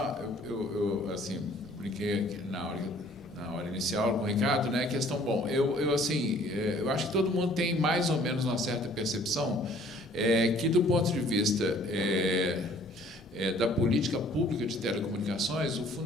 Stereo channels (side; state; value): both; normal; correlation 0.56